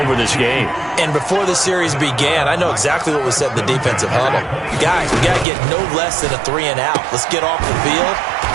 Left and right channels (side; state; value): left; drops out; at 5.5 s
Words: this game. And before the series began, I know exactly what was said in the defensive huddle. Guys, we got to get no less than a 3 and out. Let's get off the field.